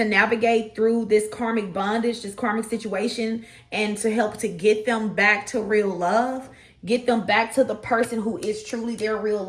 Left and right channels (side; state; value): both; identical; correlation 1.00